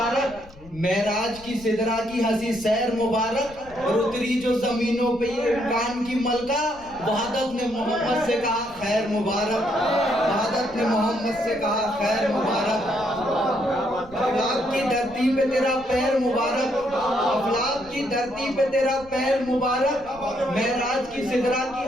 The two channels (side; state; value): left; noise; rumble, 21 dB below the sound